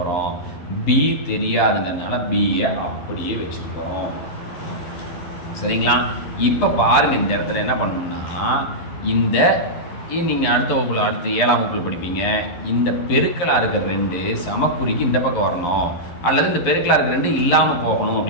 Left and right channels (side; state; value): right; late; 11 ms